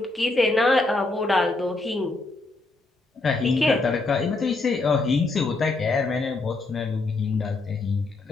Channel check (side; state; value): right; quieter; 3.3 dB